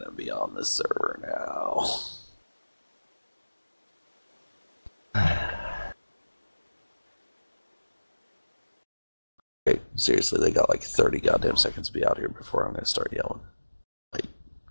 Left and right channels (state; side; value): inverted; both; correlation -1.00